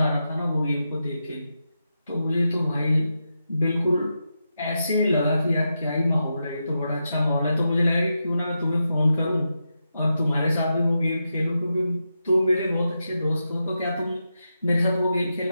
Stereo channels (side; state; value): both; inverted; correlation -0.88